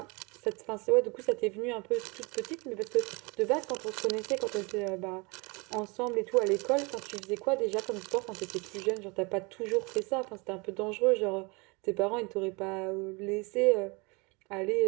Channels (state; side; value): quieter; left; 28.4 dB